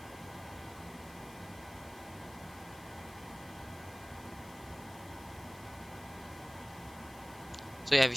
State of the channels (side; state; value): left; noise; hiss, 19 dB below the sound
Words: So yeah, we